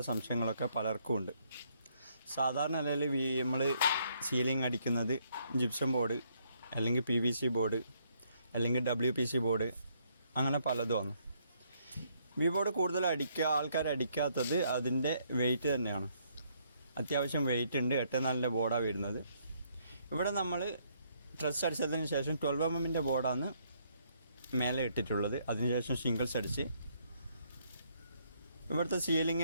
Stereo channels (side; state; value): both; inverted; correlation -0.70